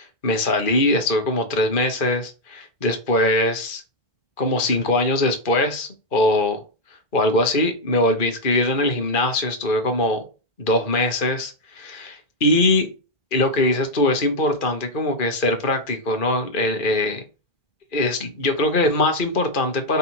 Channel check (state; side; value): late; right; 2.4 ms